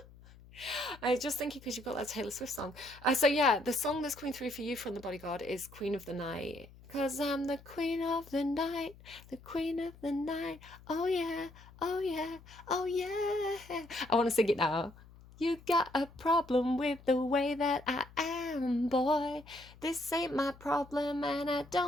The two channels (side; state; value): left; noise; hum, 22 dB below the sound